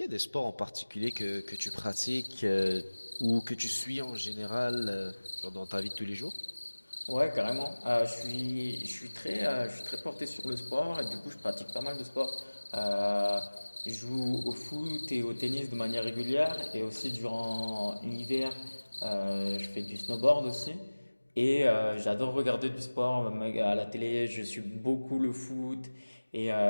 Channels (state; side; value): inverted; both; correlation -1.00